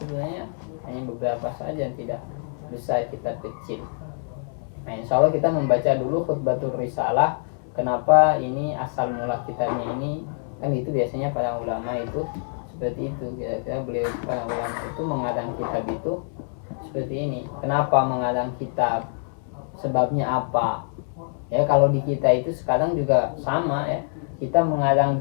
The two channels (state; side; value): silent; right; digital silence